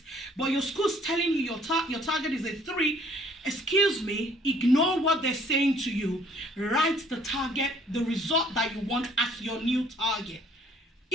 but your school's telling you your target is a 3, excuse me, ignore what they're saying to you. Write the target, the result that you want as your new target.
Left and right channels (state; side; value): normal; both; correlation 0.59